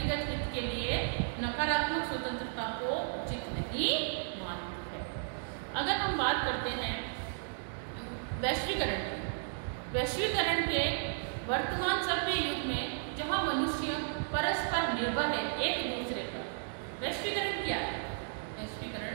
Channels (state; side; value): silent; left; digital silence